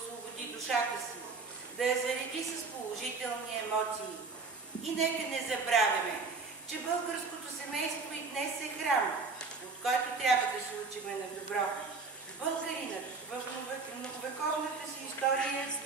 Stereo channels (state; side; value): quieter; left; 4.3 dB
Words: душата си, да я зареди с положителни емоции. И нека не забравяме, че българското семейство и днес е храм, от който трябва да се учиме на добро. Българинът в многовековната си история